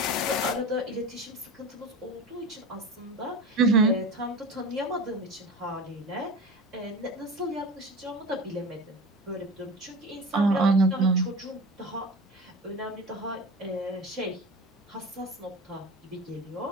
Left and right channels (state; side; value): normal; both; correlation 0.31